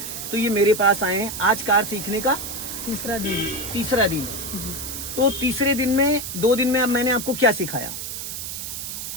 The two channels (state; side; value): noise; right; hiss, 7 dB below the sound